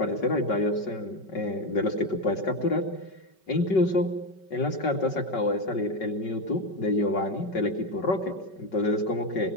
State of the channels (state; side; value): late; right; 5.3 ms